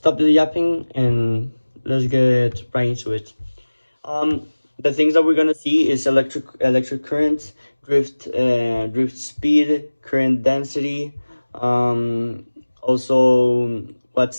the yapping and let's get right into it. Um, the things that we're gonna see is electric current, drift speed, current density, also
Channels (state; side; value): inverted; both; correlation -1.00